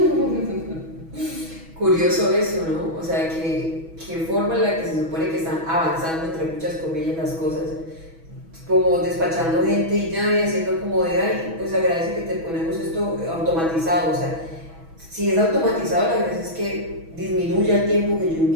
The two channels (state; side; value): late; left; 6.1 ms